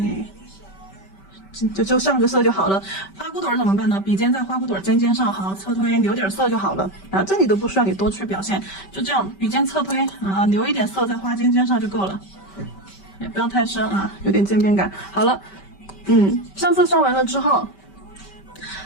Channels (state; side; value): late; right; 5.2 ms